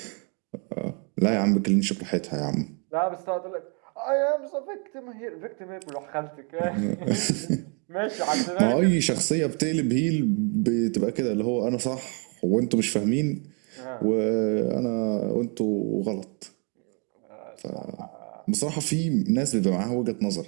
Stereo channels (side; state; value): left; quieter; 36.7 dB